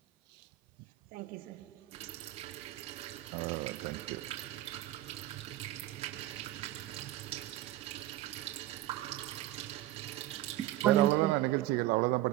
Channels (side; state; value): left; quieter; 15.3 dB